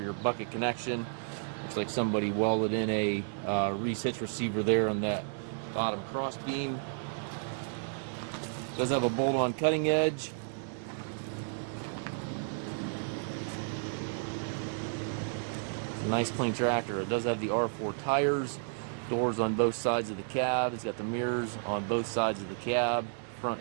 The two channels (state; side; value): silent; left; digital silence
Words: your bucket connection. Looks like somebody welded in a Reese hitch receiver there on that bottom cross beam. Does have a bolt-on cutting edge. It's a nice clean tractor. It does have the R4 tires, doors on both sides of the cab. It's got the mirrors on both sides of the cab,